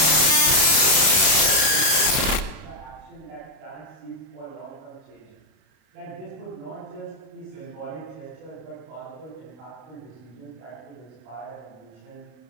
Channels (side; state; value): left; late; 32 ms